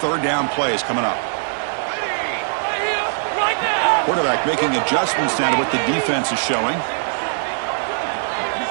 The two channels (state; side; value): silent; left; digital silence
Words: 3rd down plays coming up. Quarterback making adjustments now to what the defense is showing.